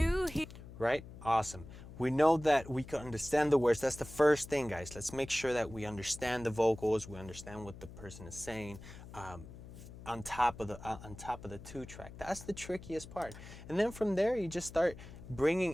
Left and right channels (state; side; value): noise; left; hum, 15 dB below the sound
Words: he. Right? Awesome. We know that we can understand the words. That's the first thing, guys. Let's make sure that we understand the vocals. We understand what the person is saying. On top of the 2-track. That's the trickiest part. And then from there, you just start